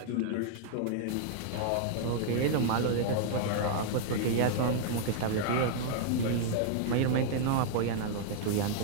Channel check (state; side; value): different; both; correlation -0.01